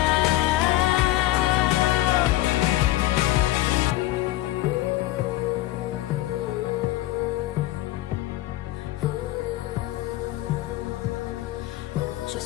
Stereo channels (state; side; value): quieter; right; 16.2 dB